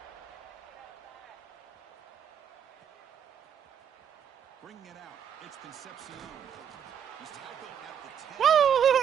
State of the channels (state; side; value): quieter; left; 8.4 dB